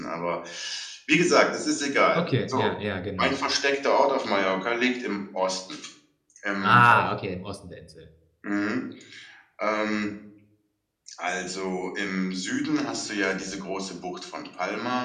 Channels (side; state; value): both; identical; correlation 1.00